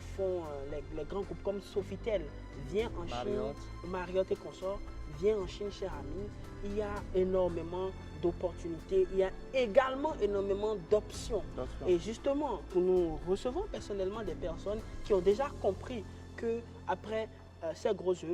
font les grands groupes comme Sofitel? Viens en Chine, Marriott et consorts, viens en Chine, cher ami. Il y a énormément d'opportunités, il y a également énormément d'options. Et justement, nous recevons personnellement des personnes qui ont déjà compris qu'après ces grosses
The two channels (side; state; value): both; identical; correlation 1.00